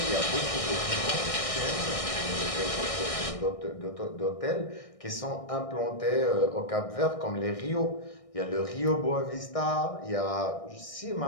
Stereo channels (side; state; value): right; late; 1.6 ms